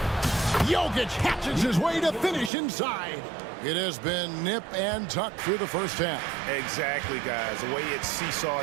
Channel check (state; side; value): drops out; left; at 2.5 s